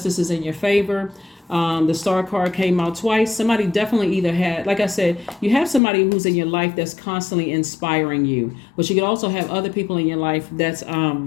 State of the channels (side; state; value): right; drops out; at 5.8 s